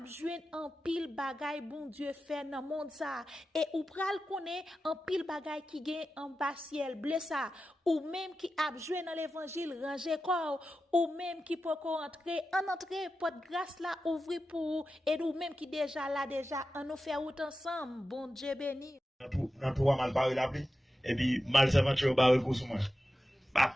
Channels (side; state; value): both; normal; correlation 0.92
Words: joine en pile bagay bon Dieu fait dans monde ça et ou pral connaît en pile bagay qui gagne en bas ciel blessa ou même qui a joué dans l'évangile ranger corps ou même qui peut entrer en entrée porte grâce là ouvrir pour et ou même qui déjà là déjà on nous fait route ensemble bon Dieu béni dans trois mal parler la pluie et puis mal s'aventure barre pour moi